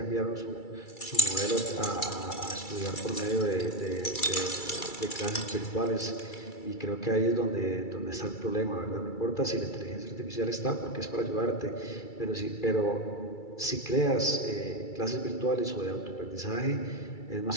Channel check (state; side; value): late; right; 2.3 ms